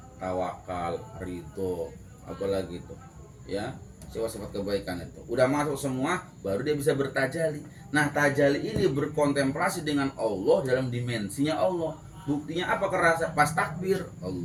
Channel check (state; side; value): identical; both; correlation 1.00